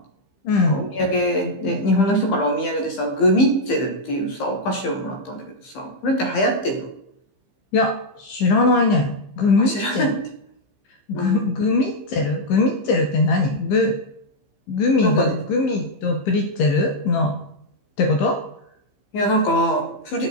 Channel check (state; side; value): late; right; 15 ms